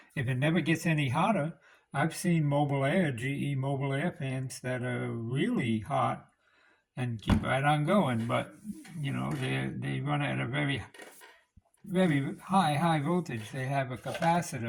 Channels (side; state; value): both; identical; correlation 1.00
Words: If it never gets any hotter, I've seen mobile air, GE mobile air fans that are really hot and keep right on going, but they run at a very high voltage. They have a